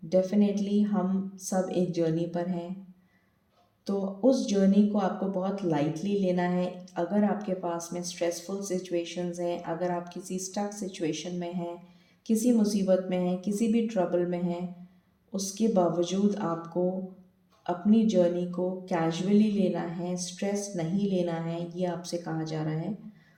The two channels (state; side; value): identical; both; correlation 1.00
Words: डेफिनेटली हम सब एक जर्नी पर हैं, तो उस जर्नी को आपको बहुत लाइटली लेना है। अगर आपके पास में स्ट्रेसफुल सिचुएशंस हैं, अगर आप किसी स्टक सिचुएशन में हैं, किसी मुसीबत में हैं, किसी भी ट्रबल में हैं, उसके बावजूद आपको अपनी जर्नी को कैजुअली लेना है, स्ट्रेस नहीं लेना है। ये आपसे कहा जा रहा है।